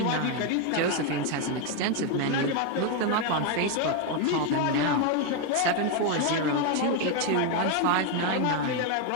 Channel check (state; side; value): different; both; correlation 0.01